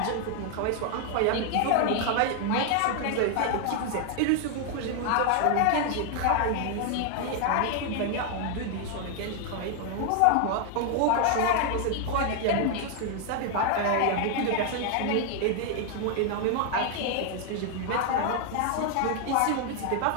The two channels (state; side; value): different; both; correlation 0.00